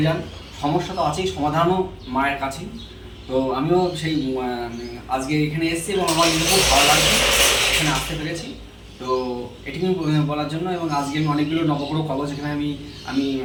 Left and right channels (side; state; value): both; identical; correlation 1.00